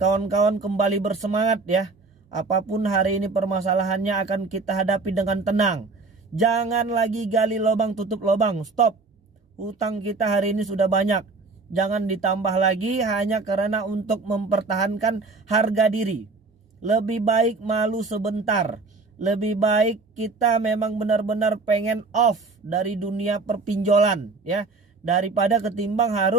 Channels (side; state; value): left; quieter; 3.9 dB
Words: kawan-kawan kembali bersemangat ya. Apapun hari ini permasalahannya akan kita hadapi dengan tenang. Jangan lagi gali lubang tutup lubang, stop. Hutang kita hari ini sudah banyak. Jangan ditambah lagi hanya karena untuk mempertahankan harga diri. Lebih baik malu sebentar. Lebih baik kita memang benar-benar pengen off dari dunia perpinjolan ya, daripada ketimbang